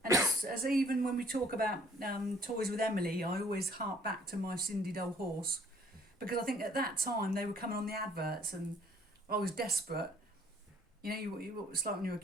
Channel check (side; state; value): both; normal; correlation 0.58